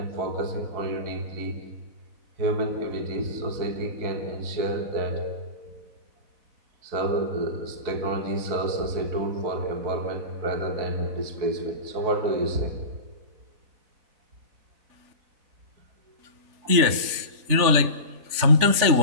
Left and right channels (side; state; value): left; late; 4.0 ms